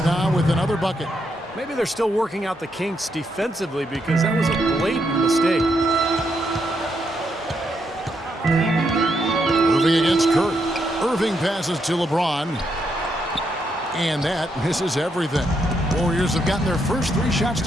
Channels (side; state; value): both; normal; correlation 0.79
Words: now with another bucket. Maybe they're still working out the kinks defensively because that was a blatant mistake. Irving against Curry. Irving passes to LeBron. And that misses everything. Warriors have gotten their first 3 shots